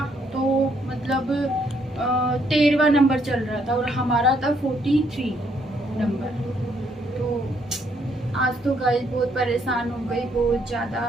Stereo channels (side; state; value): both; normal; correlation 0.71